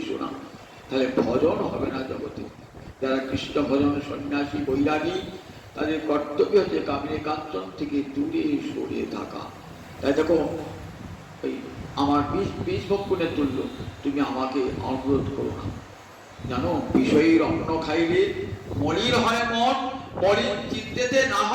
না, তাহলে ভজন হবে না জগতে। যারা কৃষ্ণ ভজন সন্ন্যাসী বৈরাগী, তাদের কর্তব্য হচ্ছে কামিনী কাঞ্চন থেকে দূরে সরে থাকা। তাই দেখো এই আমার বিষ ভক্ষণের তুল্য, তুমি আমাকে অনুরোধ করো না। জানো বিষয়ের অন্ন খাইলে মলিন হয় মন, মলিন চিত্তেতে না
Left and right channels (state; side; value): identical; both; correlation 1.00